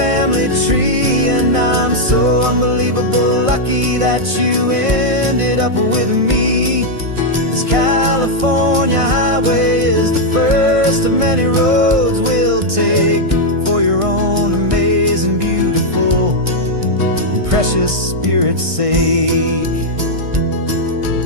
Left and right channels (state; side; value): late; left; 1.6 ms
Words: tree, and I'm so unbelievable lucky that you ended up with me. This California highway is the first of many roads we'll take for your own amazing, beautiful, and precious spirit's sake.